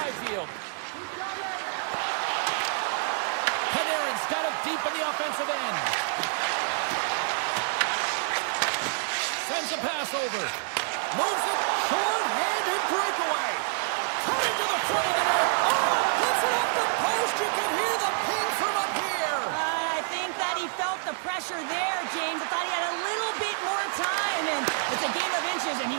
Canadiens got it deep in the offensive end. Sends a pass over. Moves it. Short-handed breakaway. Coming to the front of the net. Oh, puts it off the post. You can hear the ping from up here. I think that he felt the pressure there, James. I thought he had a little bit more time, and it's a game of inches, and he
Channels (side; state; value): left; silent; 60 dB below the other